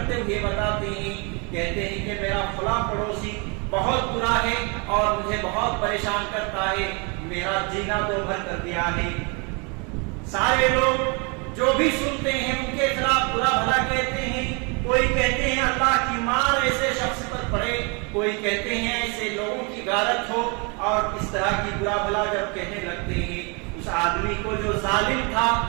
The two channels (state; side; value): quieter; left; 32.4 dB